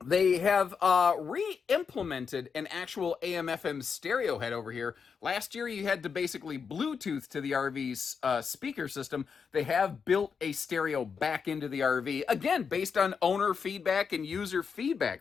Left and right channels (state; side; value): quieter; right; 6.0 dB